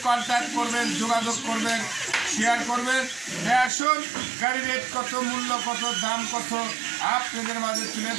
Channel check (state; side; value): drops out; left; at 3.7 s